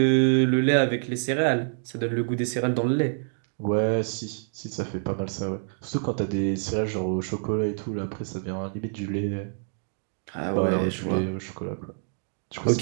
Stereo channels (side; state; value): left; silent; digital silence